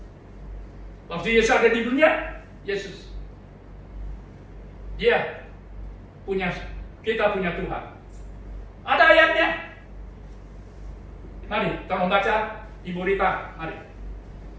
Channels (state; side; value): identical; both; correlation 1.00